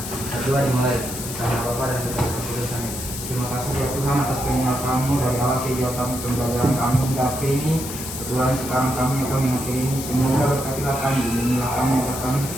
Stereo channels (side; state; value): left; noise; hiss, 8 dB below the sound